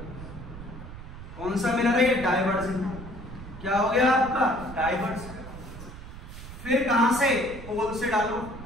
कौन सा मिरर है? ये डाइवर्जेंट। क्या हो गया आपका? डाइवर्ज। फिर कहां से? पोल से डालो,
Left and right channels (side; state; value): right; noise; rumble, 13 dB below the sound